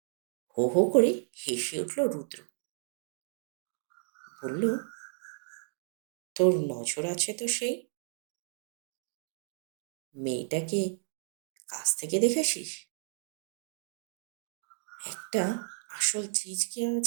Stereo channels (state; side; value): silent; left; digital silence